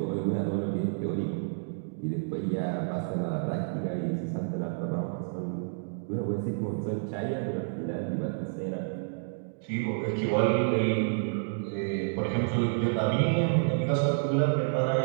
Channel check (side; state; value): left; silent; digital silence